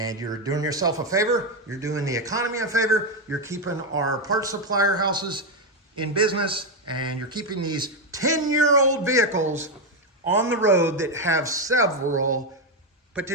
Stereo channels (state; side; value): normal; both; correlation 0.06